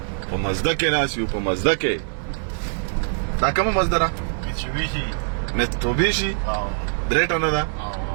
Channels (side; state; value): left; silent; digital silence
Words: په مزده کې ناست یو په مزده کې دا کومه مزده ده میتسوبیشي درې ټنه ده